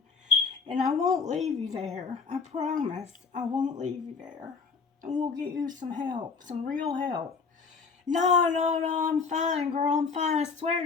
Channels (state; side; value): quieter; right; 5.0 dB